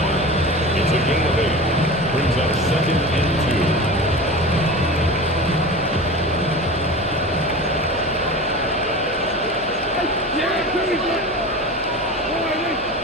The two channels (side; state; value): right; noise; hum, 20 dB below the sound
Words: It's a gain of 8. Brings up 2nd and 2.